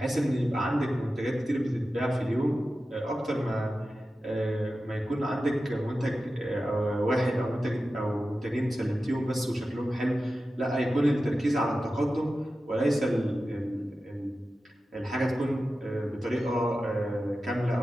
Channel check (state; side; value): normal; both; correlation 0.93